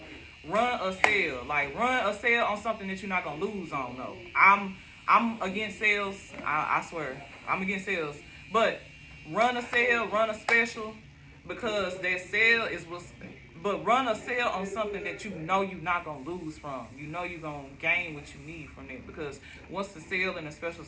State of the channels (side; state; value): both; identical; correlation 1.00